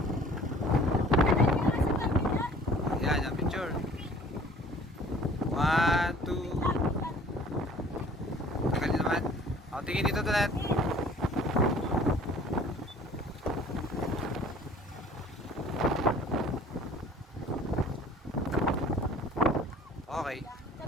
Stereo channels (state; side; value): normal; both; correlation 0.51